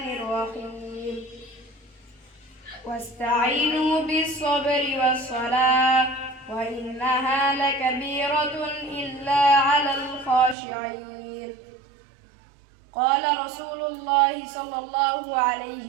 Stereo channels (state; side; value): drops out; left; at 10.6 s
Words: الرحيم. واستعينوا بالصبر والصلاة وإنها لكبيرة إلا على الخاشعين. قال رسول الله صلى الله عليه